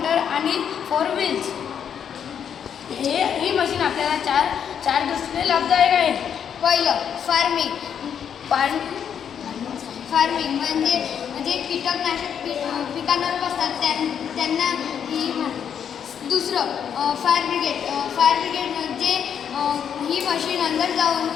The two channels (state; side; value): quieter; right; 8.2 dB